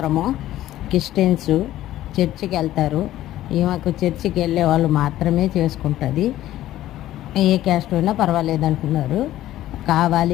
క్రిస్టియన్స్, చర్చికి వెళ్తారు. ఈమెకు చర్చికి వెళ్ళే వాళ్ళు మాత్రమే చేసుకుంటుంది. ఏ క్యాస్ట్ అయినా పర్వాలేదు అనుకున్నారు.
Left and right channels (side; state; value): right; quieter; 14.0 dB